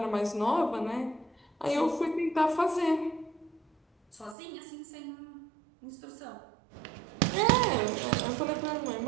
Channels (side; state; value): left; drops out; at 4.4 s